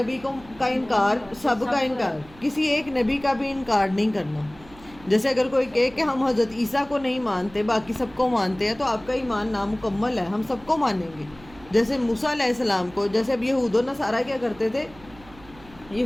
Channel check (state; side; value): noise; right; hum, 23 dB below the sound